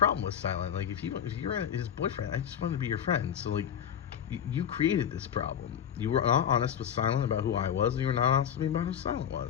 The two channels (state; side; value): quieter; right; 8.9 dB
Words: with Silent. Like, if you're his boyfriend, I just wanted to be your friend. So, like, you created this problem. You were not honest with Silent about who I was, and you were not honest with me about who Silent